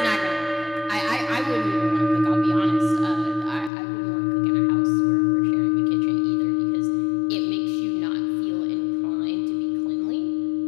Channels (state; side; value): drops out; right; at 3.7 s